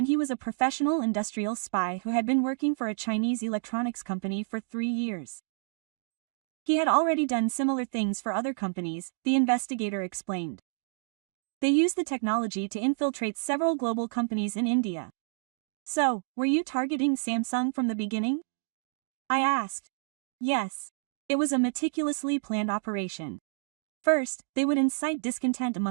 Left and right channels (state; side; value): silent; left; digital silence